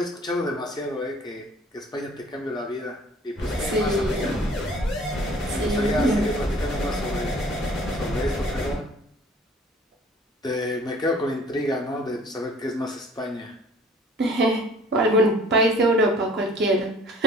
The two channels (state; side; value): normal; both; correlation 0.52